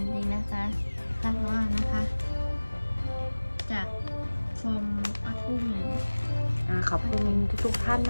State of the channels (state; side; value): inverted; both; correlation -1.00